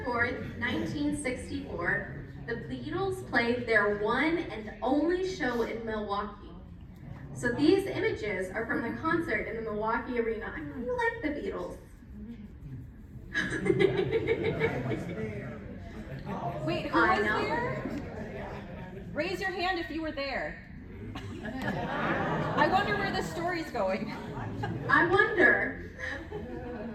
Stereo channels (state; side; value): identical; both; correlation 1.00